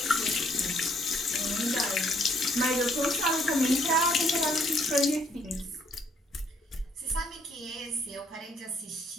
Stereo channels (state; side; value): normal; both; correlation 0.68